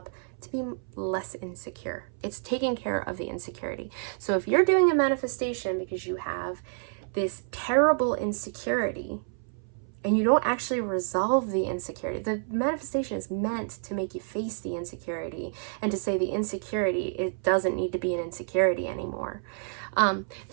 to be less insecure. It's taking care of the insecurity. So if you're doing a manifestation because you have this terrible insecurity, and you don't actually resolve the insecurity. The manifestation is meant to make you face the insecurity and to say the insecurity, it doesn't need to be an insecurity anymore.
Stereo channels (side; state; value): left; silent; 59 dB below the other